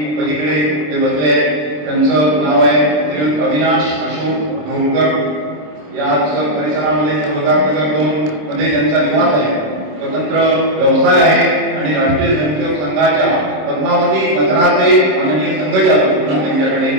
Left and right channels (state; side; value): late; left; 27 ms